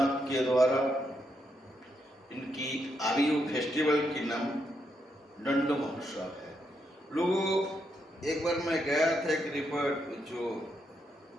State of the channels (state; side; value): normal; both; correlation 0.80